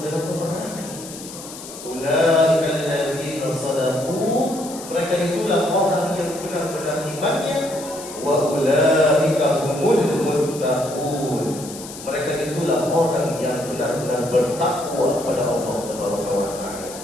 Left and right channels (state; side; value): noise; left; hiss, 13 dB below the sound